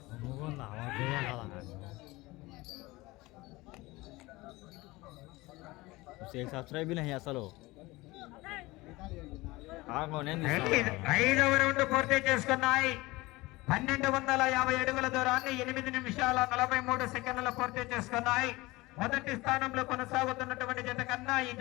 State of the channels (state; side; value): quieter; right; 21.0 dB